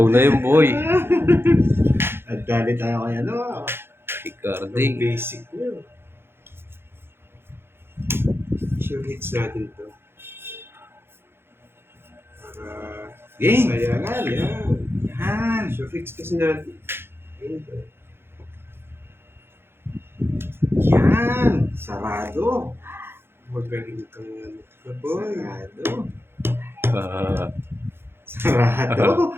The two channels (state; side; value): late; left; 0.11 ms